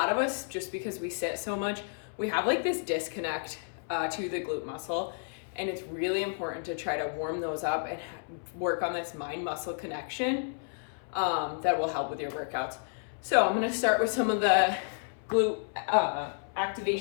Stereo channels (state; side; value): silent; right; 57 dB below the other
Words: of us, just because we sit so much, we have like this disconnect to the glute muscle. And it's really important to try to warm those up and work on this mind muscle connection that will help with your workouts. So I'm gonna start with some of the glute